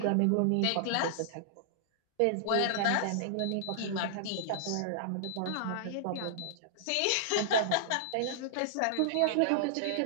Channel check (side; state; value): both; different; correlation -0.01